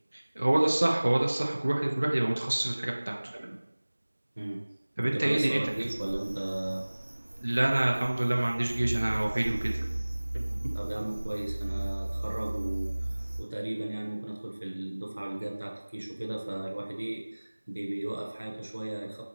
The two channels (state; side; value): inverted; both; correlation -1.00